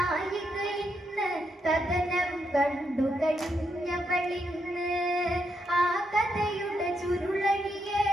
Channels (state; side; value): normal; both; correlation 0.80